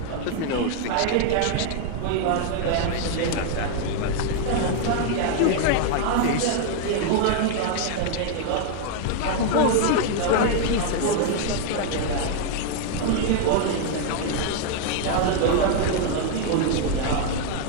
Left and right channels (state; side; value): different; both; correlation 0.00